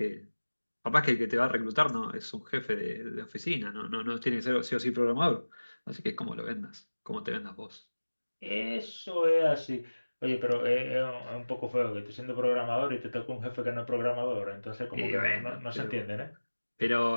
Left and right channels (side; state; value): both; inverted; correlation -1.00